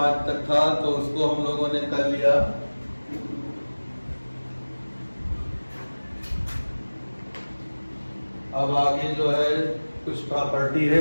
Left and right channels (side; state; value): both; inverted; correlation -1.00